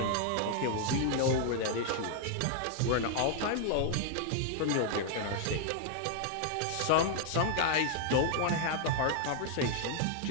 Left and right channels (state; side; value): different; both; correlation 0.00